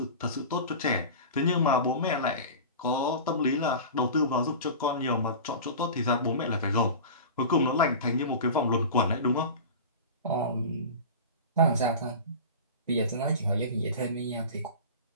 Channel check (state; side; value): inverted; both; correlation -0.32